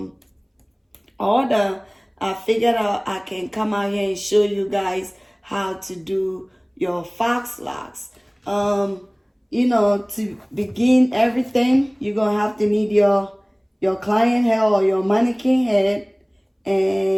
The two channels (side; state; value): both; identical; correlation 1.00